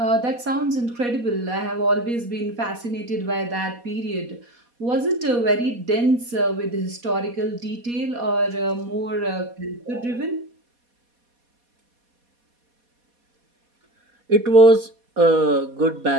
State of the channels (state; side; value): late; left; 4.2 ms